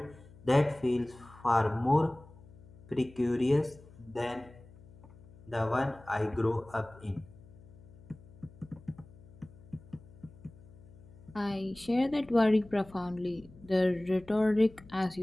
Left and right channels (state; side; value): noise; left; hum, 21 dB below the sound